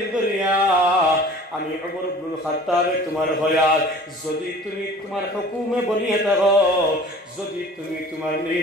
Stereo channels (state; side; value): normal; both; correlation 0.45